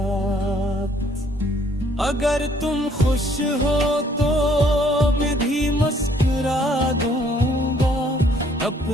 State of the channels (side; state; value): both; normal; correlation 0.63